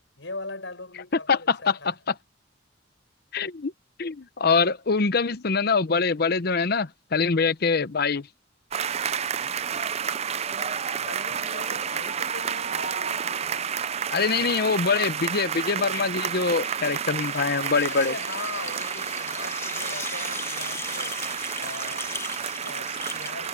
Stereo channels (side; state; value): both; normal; correlation -0.17